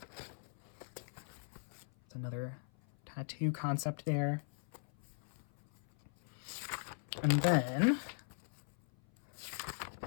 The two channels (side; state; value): right; silent; 51 dB below the other